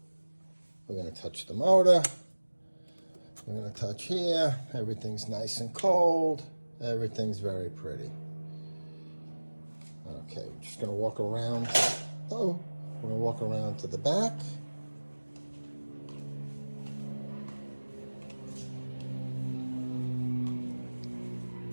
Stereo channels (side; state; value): both; inverted; correlation -1.00